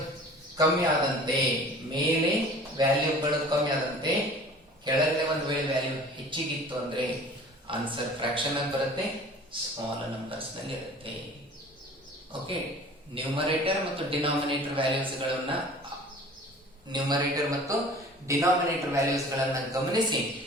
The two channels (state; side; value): normal; both; correlation 0.45